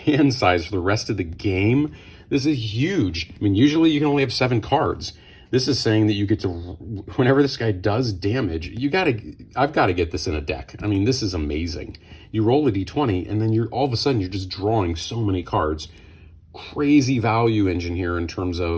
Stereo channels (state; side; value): identical; both; correlation 1.00